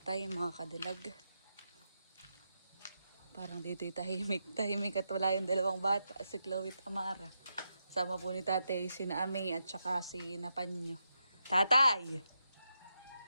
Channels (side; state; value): both; inverted; correlation -0.85